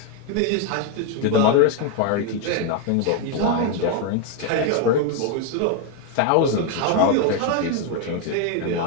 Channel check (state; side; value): different; both; correlation 0.01